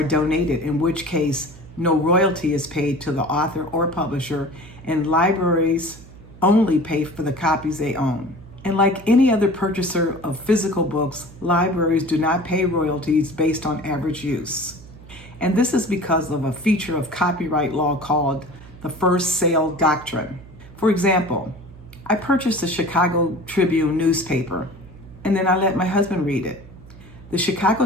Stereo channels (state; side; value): noise; right; hum, 19 dB below the sound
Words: donated, in which case no royalty is paid to the author or publisher, and libraries only pay for the copies they own. And like any other purchaser of physical books, libraries do not pay royalties based on average use. And this is because of a feature of copyright law called the first sale doctrine. For example, I purchased the Chicago Tribune newspaper, and then I let my husband read it. The